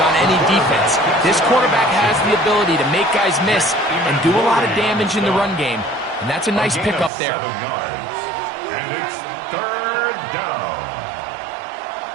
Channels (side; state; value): left; drops out; at 7.1 s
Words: any defense. This quarterback has the ability to make guys miss and do a lot of damage in the run game. And that's a nice pickup there. 7 yards. And it's 3rd down.